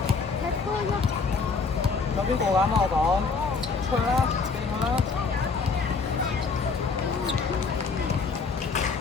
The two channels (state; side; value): quieter; right; 4.7 dB